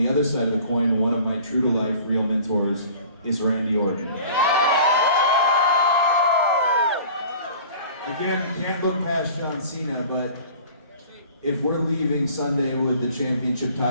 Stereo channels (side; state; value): both; inverted; correlation -0.46